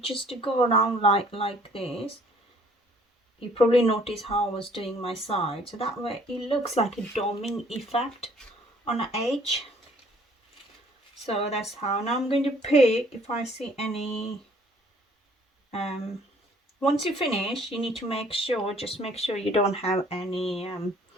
just to go around like this. You probably notice how I was doing my side, so that way it looks like a doming effect on the edge. So that's how. Now I'm going to pick if I see any once you finish, you need to make sure, just make sure you don't have any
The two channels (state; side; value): normal; both; correlation 0.59